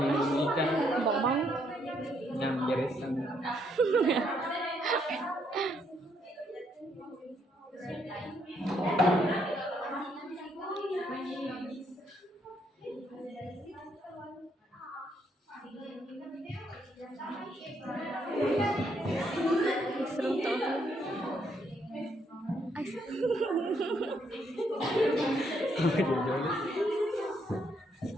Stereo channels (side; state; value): both; normal; correlation 0.73